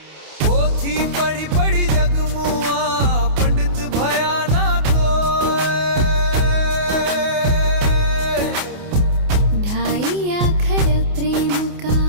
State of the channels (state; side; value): late; left; 28 ms